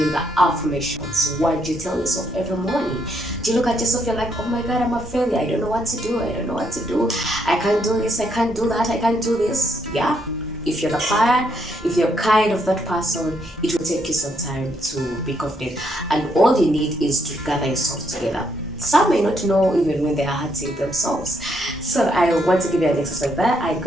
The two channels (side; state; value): both; normal; correlation 0.75